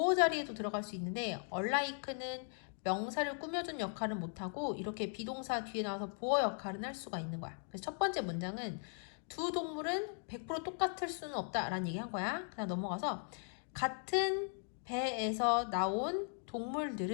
자리에도 들어갈 수 있는데 unlike는 명사를 꾸며준 역할은 못하고 이렇게 비동사 뒤에 나와서 보어 역할은 할 수가 있는 거야. 그래서 첫 번째 문장은 두 동물은 100% 똑같을 수는 없다라는 얘기 한 거야. 그다음 넘어가서 같은 배에서 나온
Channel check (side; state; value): right; silent; 52 dB below the other